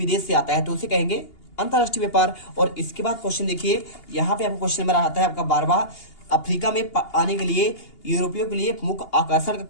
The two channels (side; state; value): right; late; 2.8 ms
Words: से आता है तो उसे कहेंगे अंतर्राष्ट्रीय व्यापार। और इसके बाद क्वेश्चन देखिए, यहाँ पे आपको क्वेश्चन नंबर आता है आपका 12वां, अफ्रीका में आने के लिए यूरोपियों के लिए मुख्य आकर्षण का